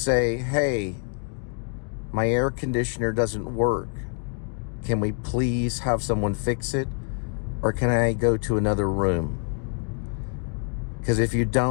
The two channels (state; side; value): quieter; right; 38.7 dB